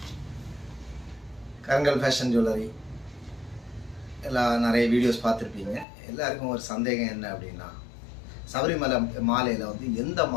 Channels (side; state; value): right; drops out; at 5.9 s